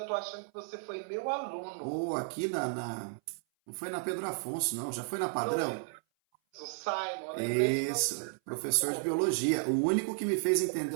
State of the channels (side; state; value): left; silent; 56 dB below the other